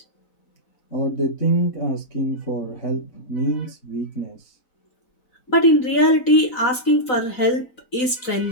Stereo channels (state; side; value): late; right; 4.0 ms